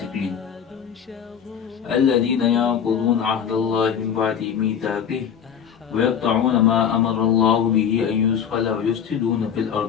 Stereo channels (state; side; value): quieter; right; 8.0 dB